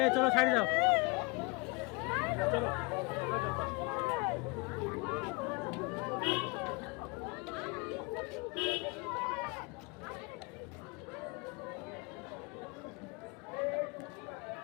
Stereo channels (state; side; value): quieter; right; 27.6 dB